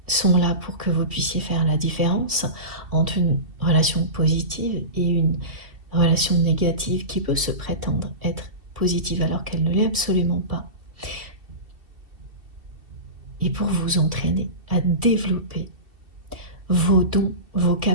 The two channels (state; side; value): late; left; 2.7 ms